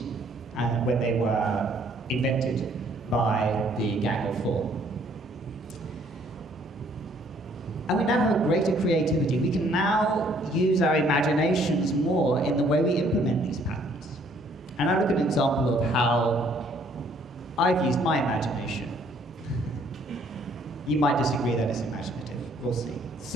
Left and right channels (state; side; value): normal; both; correlation 0.63